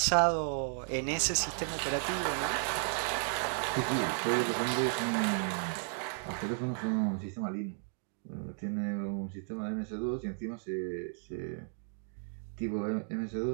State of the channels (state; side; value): silent; left; 55 dB below the other